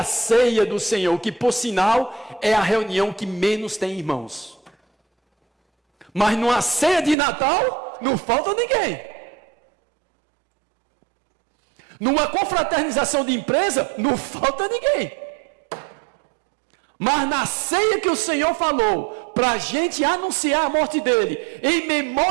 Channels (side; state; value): left; drops out; at 7.2 s